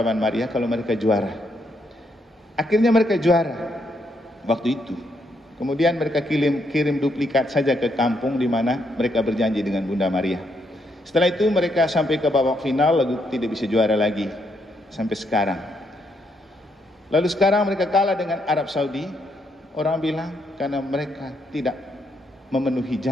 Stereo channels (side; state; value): both; normal; correlation 0.76